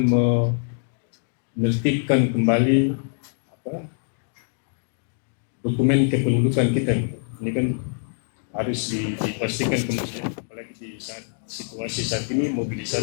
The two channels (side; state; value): right; silent; 59 dB below the other